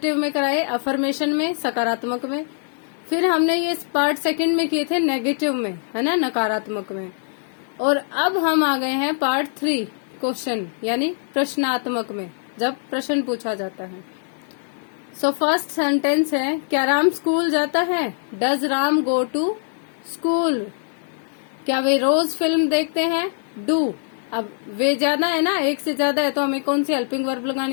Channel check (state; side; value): silent; right; digital silence